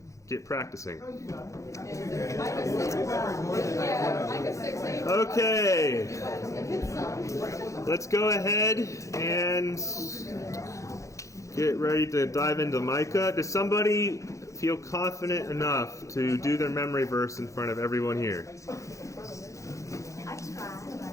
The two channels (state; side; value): late; right; 0.15 ms